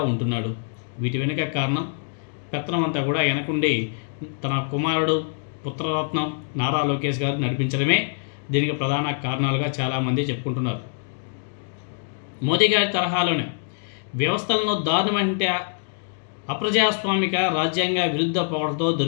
ఉంటున్నాడు? వీటి వెనుక కారణం పెత్తనం అంతా కూడా వెనకుండి తన కుమారుడు పుత్రరత్నం నారా లోకేష్ గారు నడిపించడమే దీనికి ప్రధాన కారణాలుగా చాలామంది చెప్పుకుంటున్నారు. మోదీ గారి తరహాలోనే వ్యవస్థలను దారుణమంటే అప్రజాస్వామిక రాజ్యాంగ విరుద్ధ పొగడతో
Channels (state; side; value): silent; right; digital silence